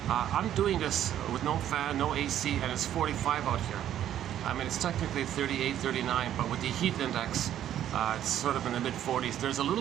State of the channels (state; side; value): quieter; left; 11.2 dB